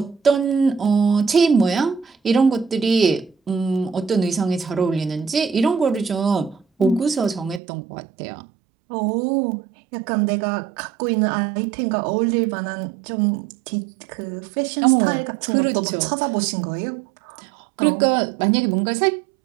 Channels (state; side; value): drops out; left; at 7.6 s